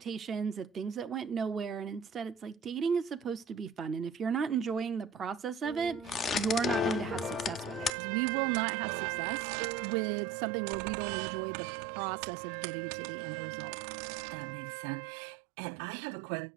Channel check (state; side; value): drops out; left; at 8.0 s